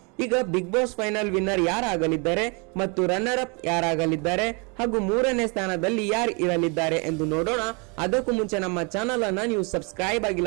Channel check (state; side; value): quieter; left; 32.5 dB